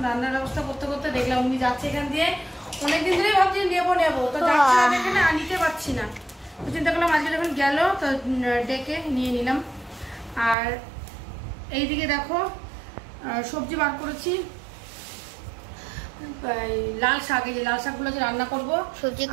রান্নার ব্যবস্থা করতে করতে দেখলাম উনি যাচ্ছে এখান দিয়ে। অনেকদিন ধরেই ভাবছি নেবো, তো যাচ্ছে না এখানে, নিতে পারছি না। তো চিন্তা করলাম আজকে যখন গেল তো ডেকে নিয়ে নিলাম। আর এইদিকে দেখো সবজি বার করেছি, লাল শাক। এই যে লাল শাকগুলো যে রান্না করবো, সবজি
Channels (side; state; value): left; drops out; at 10.6 s